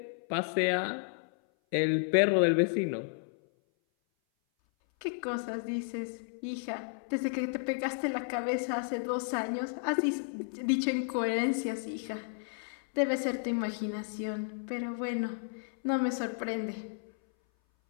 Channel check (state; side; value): silent; right; 56 dB below the other